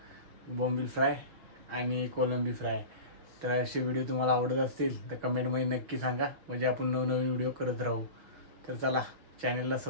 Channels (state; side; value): late; left; 6.3 ms